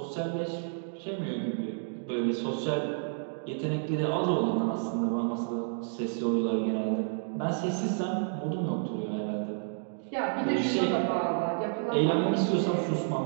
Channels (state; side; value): silent; left; digital silence